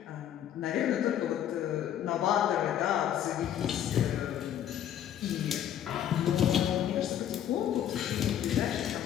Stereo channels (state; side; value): quieter; right; 10.4 dB